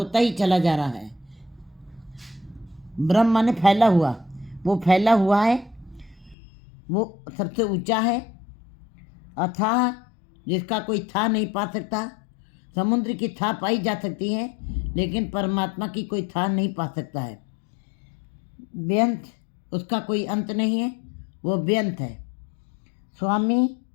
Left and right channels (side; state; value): right; drops out; at 6.4 s